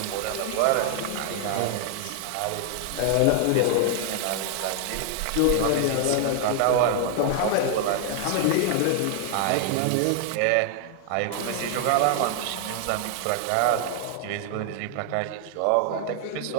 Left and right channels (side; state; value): both; different; correlation 0.00